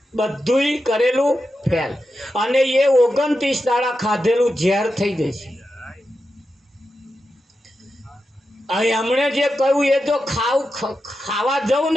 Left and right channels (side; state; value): both; normal; correlation 0.89